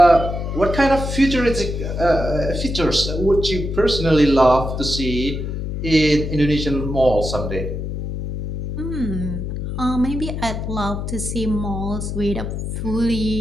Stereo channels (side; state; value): left; noise; hum, 4 dB below the sound